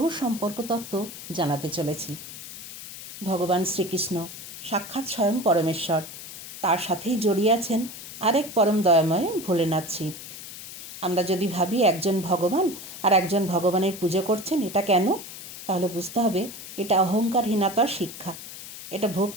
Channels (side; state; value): left; noise; hiss, 12 dB below the sound